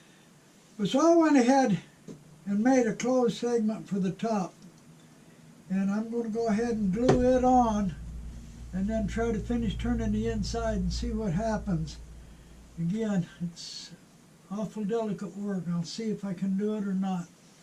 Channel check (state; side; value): identical; both; correlation 1.00